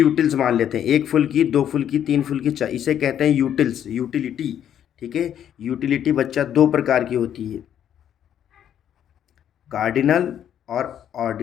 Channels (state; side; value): quieter; right; 9.9 dB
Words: मान लेते हैं, एक फुल्की, दो फुल्की, तीन फुल्की, चार, इसे कहते हैं यूटिल्स, यूटिलिटी। ठीक है। यूटिलिटी बच्चा दो प्रकार की होती है, कार्डिनल और